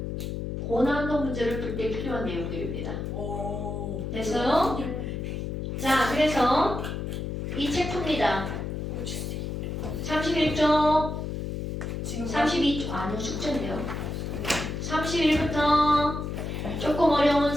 고난도 문제를 풀 때 필요한 내용들입니다. 오. 됐어요? 자, 그래서 이 책 풉니다. 31쪽, 지금 32쪽, 아니요, 숙제인데요. 31부터 조금 어려운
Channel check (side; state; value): left; noise; hum, 4 dB below the sound